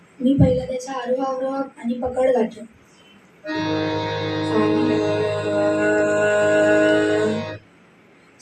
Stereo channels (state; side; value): identical; both; correlation 1.00